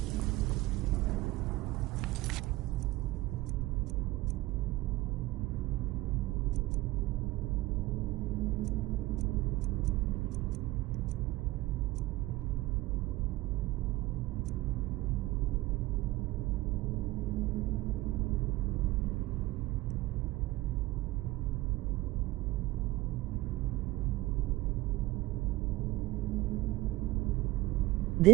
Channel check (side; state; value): left; quieter; 18.7 dB